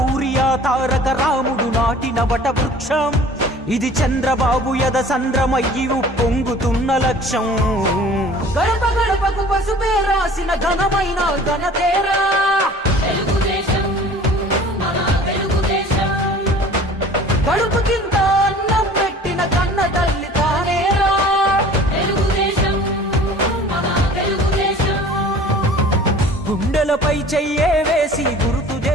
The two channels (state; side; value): normal; both; correlation 0.46